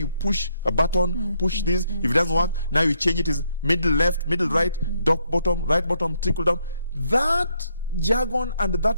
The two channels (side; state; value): both; inverted; correlation -0.74